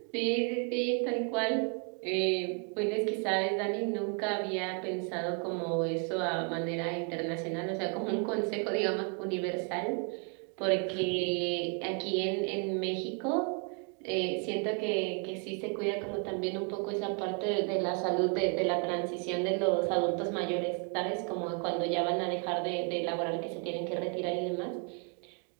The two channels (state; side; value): quieter; left; 37.2 dB